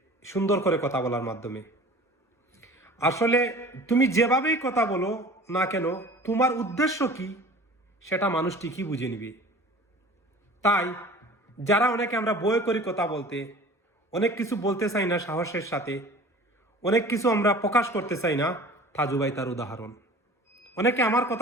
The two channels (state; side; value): normal; both; correlation 0.43